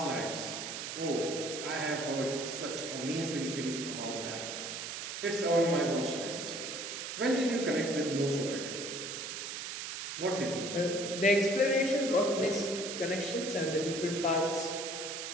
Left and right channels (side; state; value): right; noise; hiss, 6 dB below the sound